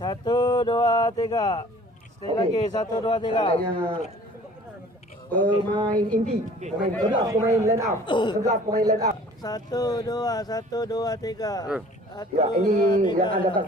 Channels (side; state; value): both; normal; correlation 0.50